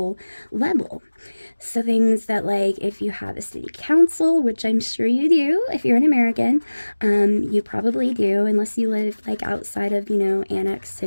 level. So things that, like, if you have a city council, which I'm sure you do if you're an American, you probably do, unless you live like outside of, you know, Annex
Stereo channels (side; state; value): both; inverted; correlation -1.00